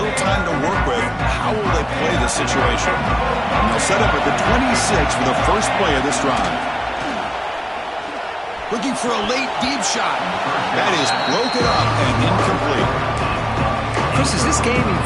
little time to work with. How will they play this situation? And they'll set up at the 26 for the first play of this drive. Looking for a late deep shot. That is broken up and incomplete. Chris, as this game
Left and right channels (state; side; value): identical; both; correlation 1.00